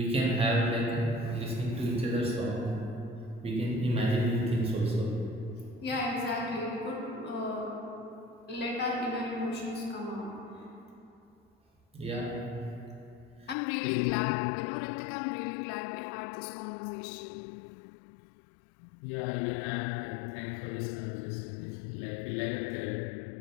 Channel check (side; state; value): right; drops out; at 13.6 s